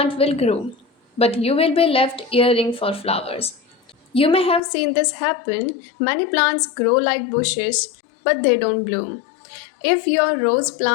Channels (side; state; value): right; drops out; at 4.6 s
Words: will grow, but you will be left yearning for flowers. You may have seen this happen. Many plants grow like bushes, but they don't bloom. If your rose